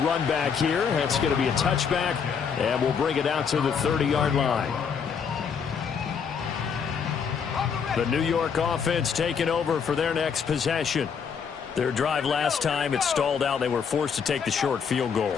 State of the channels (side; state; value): right; quieter; 6.6 dB